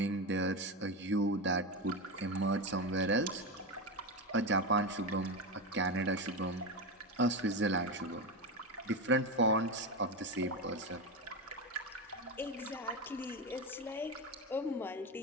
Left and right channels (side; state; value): both; normal; correlation 0.15